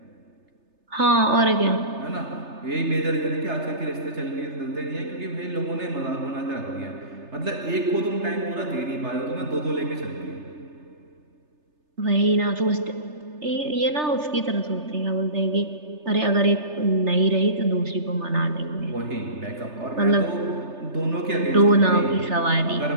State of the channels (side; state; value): left; late; 3.3 ms